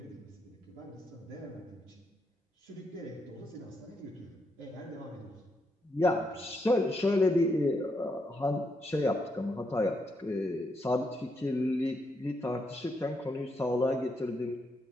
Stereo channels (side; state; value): both; normal; correlation 0.80